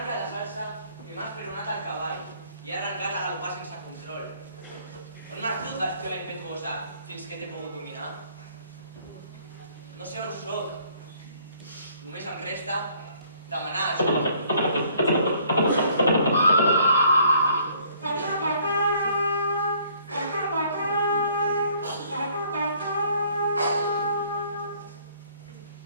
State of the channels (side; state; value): both; inverted; correlation -0.61